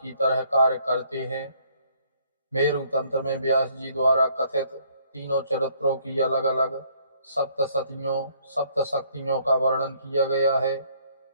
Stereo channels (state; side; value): inverted; both; correlation -0.65